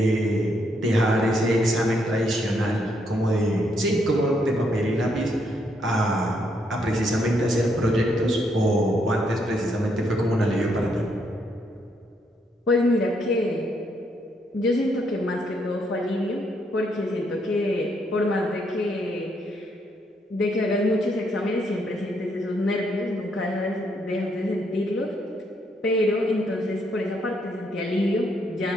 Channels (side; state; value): both; normal; correlation 0.75